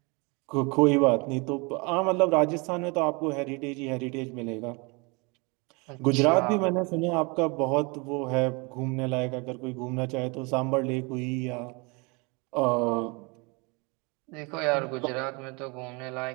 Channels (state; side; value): quieter; left; 29.1 dB